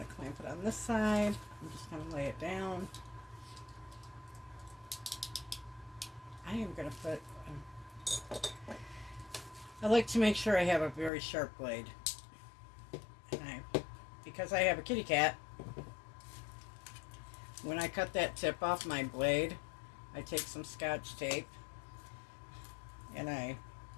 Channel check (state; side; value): drops out; right; at 11.1 s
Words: to clamp it on this side. I'm just going to lay it down. I am going to put, I like to make sure I have a very sharp blade. And because I have a kitty cat, when I cut that tip off my blade, I take some Scotch tape and I